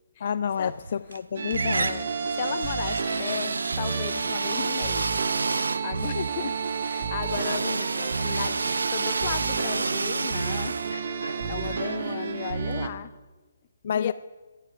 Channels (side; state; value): both; inverted; correlation -0.78